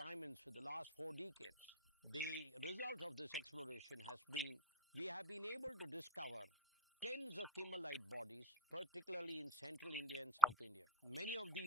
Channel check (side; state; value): both; normal; correlation 0.32